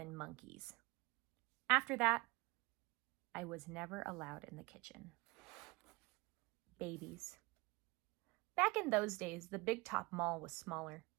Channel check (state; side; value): quieter; left; 23.8 dB